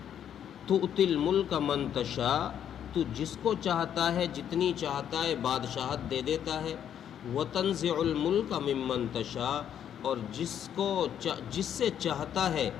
تُؤْتِي الْمُلْكَ مَن تَشَاءُ، تو جس کو چاہتا ہے جتنی چاہتا ہے بادشاہت دے دیتا ہے۔ وَتَنزِعُ الْمُلْكَ مِمَّن تَشَاءُ، اور جس سے چاہتا ہے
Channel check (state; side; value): quieter; right; 9.5 dB